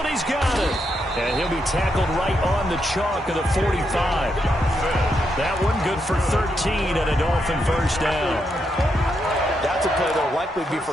He's got it. And he'll be tackled right on the chalk of the 45. That one good for 13 and a Dolphin first down. That's a play that will likely be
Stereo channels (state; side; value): normal; both; correlation 0.81